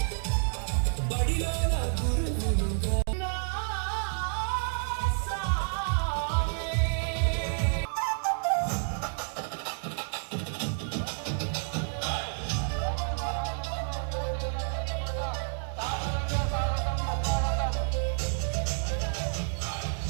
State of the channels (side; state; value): left; silent; digital silence